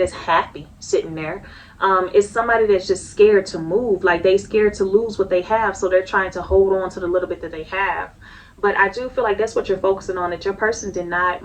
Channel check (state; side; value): identical; both; correlation 1.00